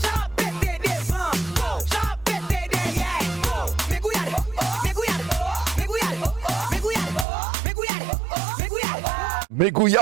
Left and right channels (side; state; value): left; drops out; at 7.2 s